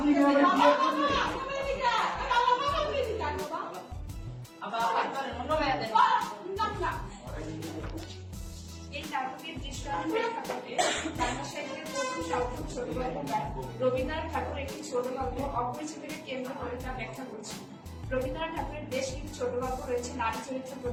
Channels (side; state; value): both; identical; correlation 1.00